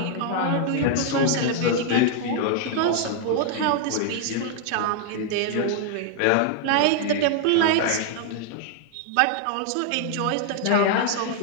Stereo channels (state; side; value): different; both; correlation 0.00